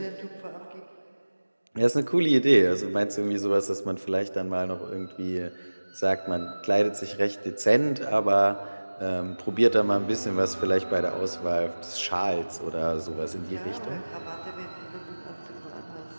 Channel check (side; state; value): both; inverted; correlation -1.00